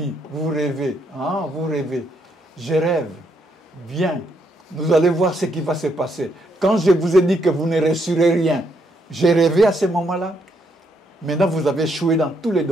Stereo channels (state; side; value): normal; both; correlation 0.75